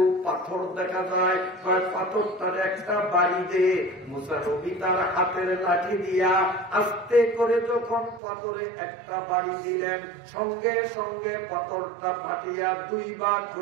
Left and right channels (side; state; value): left; drops out; at 8.2 s